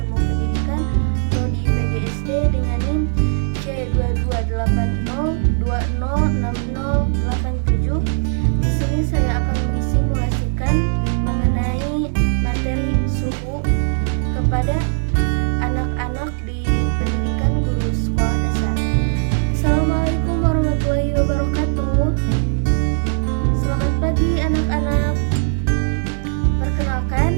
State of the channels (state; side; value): silent; left; digital silence